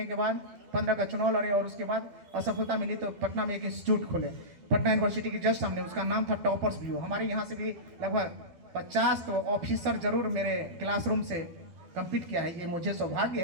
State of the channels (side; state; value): left; late; 12 ms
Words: के बाद 15 का चुनाव लड़े और उसके बाद असफलता मिली तो पटना में एक इंस्टीट्यूट खोले, पटना यूनिवर्सिटी के जस्ट सामने। उसका नाम था टॉपर्स व्यू। हमारे यहाँ से भी लगभग 50 तो ऑफिसर जरूर मेरे क्लासरूम से कंप्लीट किया है, ये मुझे सौभाग्य